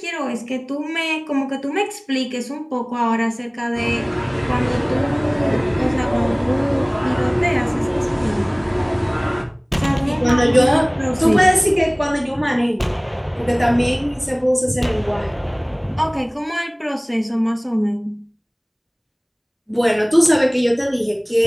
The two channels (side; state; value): both; identical; correlation 1.00